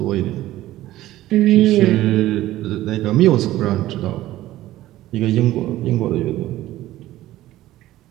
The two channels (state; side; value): quieter; left; 15.2 dB